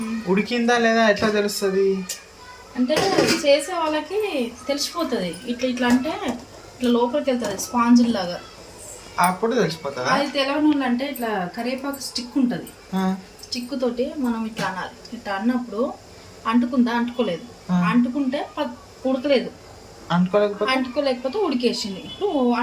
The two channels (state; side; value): identical; both; correlation 1.00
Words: ఉడికిందా లేదా ఎట్లా తెలుస్తుంది? అంటే చేసే వాళ్ళకి తెలిసిపోతుంది, ఇట్లా ఇట్లా అంటే ఇట్లా లోపలికి వెళ్తుంది స్పాంజ్ లాగా, అప్పుడు తెలిసిపోతుంది. అది తెలవని వాళ్ళు అంటే ఇట్లా కరివేపాకు స్టిక్ ఉంటుంది, స్టిక్ తోటి మనం ఇట్లా అనాలి. ఇట్లా అన్నప్పుడు అంటుకుందా, అంటుకోలేదు, అంటుకుంటే ఉడకలేదు, అంటుకోలేకపోతే ఉడికేసింది. ఇప్పుడు